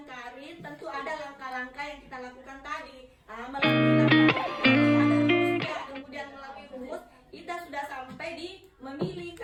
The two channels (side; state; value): both; identical; correlation 1.00